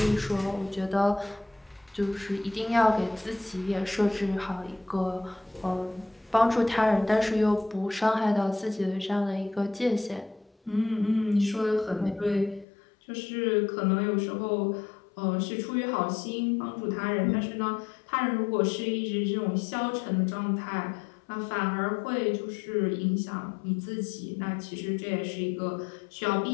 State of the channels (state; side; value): drops out; right; at 12.7 s